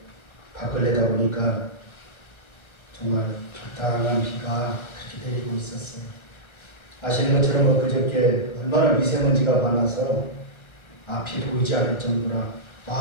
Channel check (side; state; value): right; late; 1.3 ms